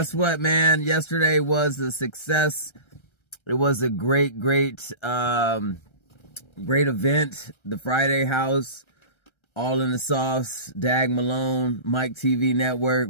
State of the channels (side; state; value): right; late; 1.3 ms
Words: what, man? Yesterday was a success. It was a great event. The Friday House, All in the Sauce, Dag Malone, Mike TV Network.